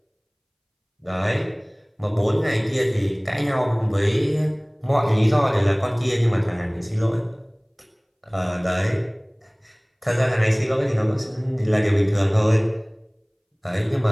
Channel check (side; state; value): both; identical; correlation 1.00